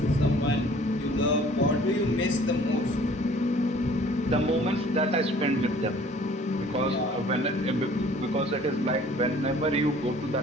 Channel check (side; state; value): both; normal; correlation 0.53